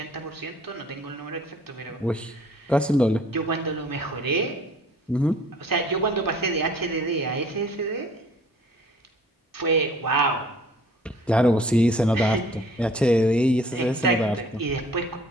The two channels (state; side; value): normal; both; correlation 0.54